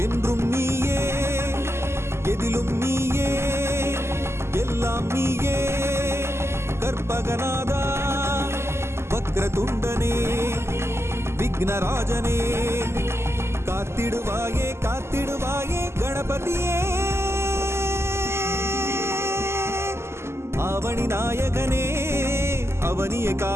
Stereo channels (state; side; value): late; left; 0.13 ms